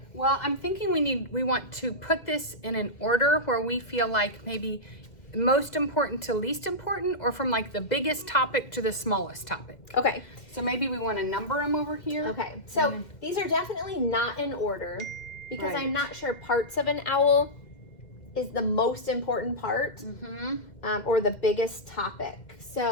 Well, I'm thinking we want to put this in an order where we feel like maybe most important to least important, or from like the biggest topic to the smallest topic. Okay. So maybe we want to number them over here. Okay. So these are definitely not in order because Right. I'm not sure parts of an owl is the most important part or the biggest topic.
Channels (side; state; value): right; late; 2.1 ms